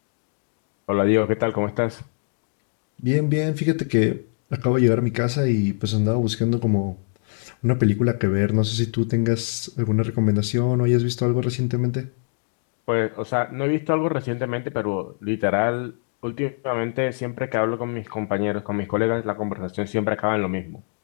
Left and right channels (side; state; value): right; silent; 63 dB below the other